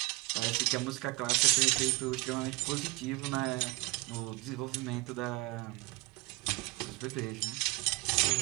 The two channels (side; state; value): left; quieter; 24.1 dB